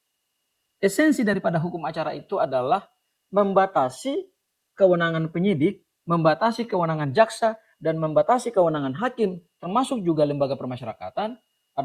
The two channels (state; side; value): identical; both; correlation 1.00